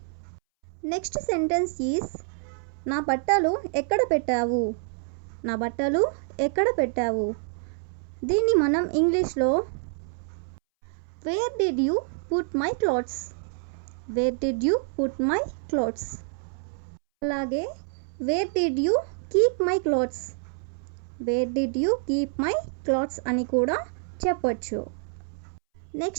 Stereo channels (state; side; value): silent; left; 60 dB below the other